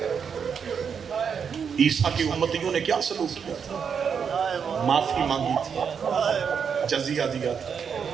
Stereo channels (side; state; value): left; quieter; 6.8 dB